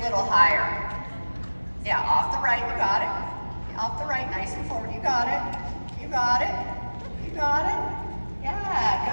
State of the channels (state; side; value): inverted; both; correlation -1.00